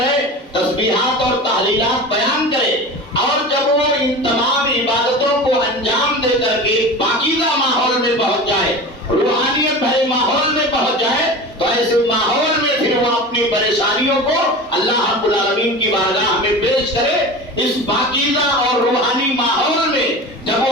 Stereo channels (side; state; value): both; normal; correlation 0.32